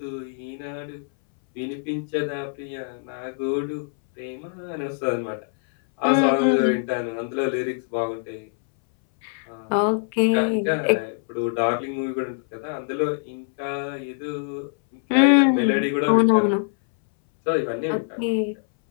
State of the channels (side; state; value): right; silent; 61 dB below the other